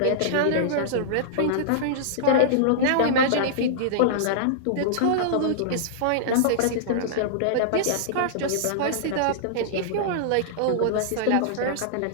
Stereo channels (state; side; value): different; both; correlation -0.02